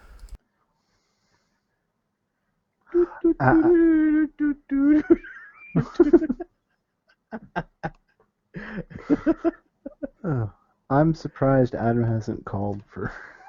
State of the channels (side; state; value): both; identical; correlation 1.00